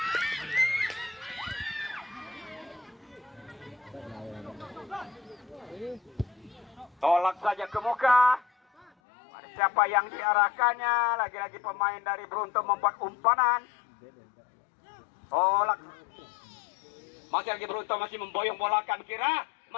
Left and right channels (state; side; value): drops out; right; at 8.9 s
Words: Tolak saja ke muka. Ada siapa yang diarahkannya? Lagi-lagi pemain dari Beruntu membuat umpanan. Tolak. Masih lagi Beruntu masih memboyong bola kan kira.